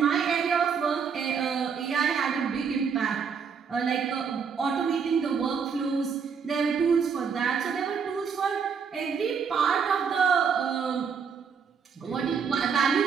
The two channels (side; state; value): left; quieter; 6.4 dB